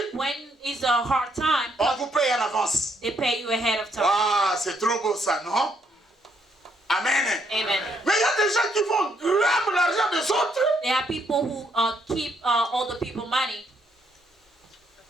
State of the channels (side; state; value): both; normal; correlation 0.73